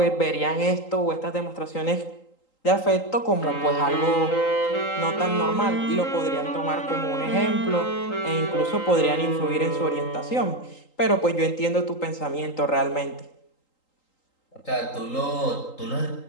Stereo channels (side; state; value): right; late; 3.8 ms